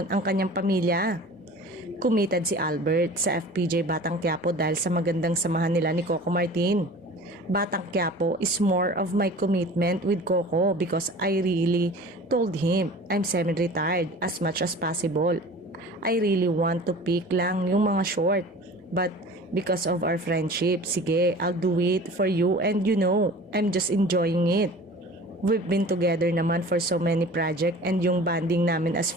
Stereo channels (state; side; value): normal; both; correlation 0.42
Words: ang kanyang pamilya. Committed si Albert sa FPJ Batang Quiapo dahil sa magandang samahan nila ni Coco Martin. Batang Quiapo is more of my commitment with Coco because I really told him I'm semi-retired as much as possible. I really want to pick lang yung mga short. But because of our friendship, sige, I'll do it for you and I'm just enjoying it. We've been together naman for so many projects and yung bonding namin as